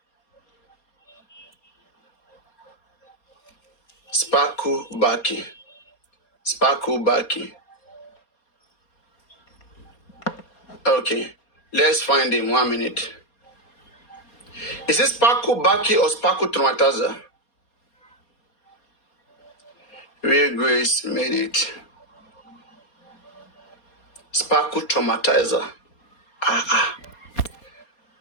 Sparkle Baki. Sparkle Baki. Okay. Let's find him. 1 minute. Is this Sparkle Baki or Sparkle Traumatizer? Real Grace made it. Sparkle Traumatizer.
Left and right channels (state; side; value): late; right; 4.2 ms